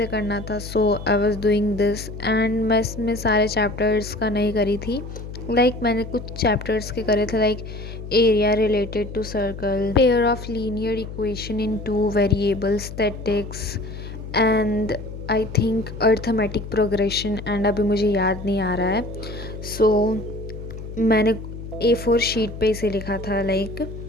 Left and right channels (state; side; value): noise; left; hum, 10 dB below the sound